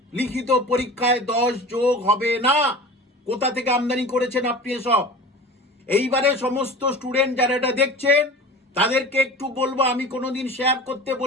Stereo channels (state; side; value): normal; both; correlation 0.37